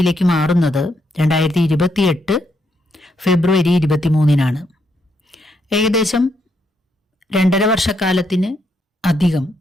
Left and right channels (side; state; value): both; normal; correlation 0.77